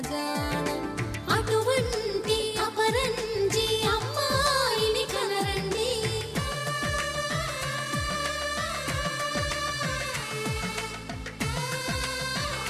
జాన అటువంటి అపరంజి అమ్మాయిని కనరండి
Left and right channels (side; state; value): both; identical; correlation 1.00